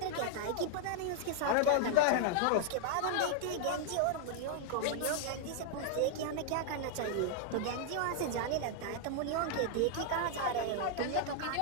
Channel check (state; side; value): different; both; correlation -0.01